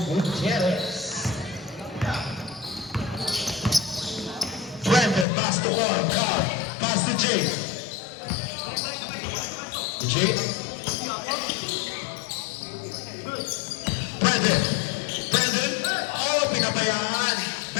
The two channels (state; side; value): drops out; right; at 5.2 s